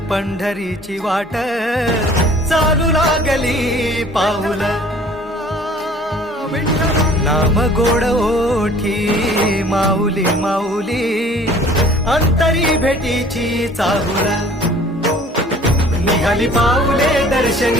पंढरीची वाट चालू लागली पाऊल नाम गोड ओठी माऊली माऊली अंतरी भेटीची चाहुल निघाली पाऊले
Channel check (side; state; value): both; normal; correlation 0.51